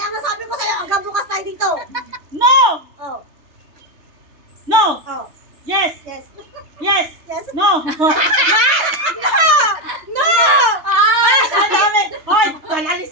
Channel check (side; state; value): left; late; 3.3 ms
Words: nga sabi ko sa'yo, hanggang bukas tayo dito. No! Oh, No! oh, Yes! yes. Yes! Yes. No! No! Ay, ang dami! Hoy,